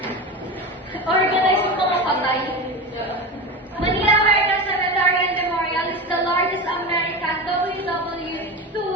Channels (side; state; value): both; normal; correlation 0.23